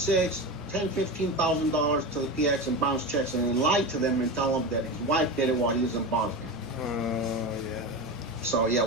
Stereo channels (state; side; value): normal; both; correlation 0.23